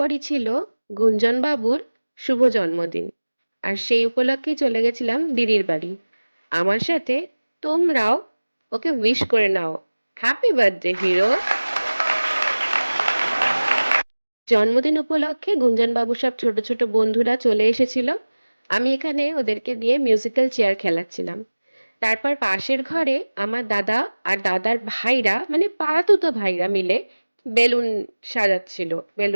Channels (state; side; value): inverted; both; correlation -1.00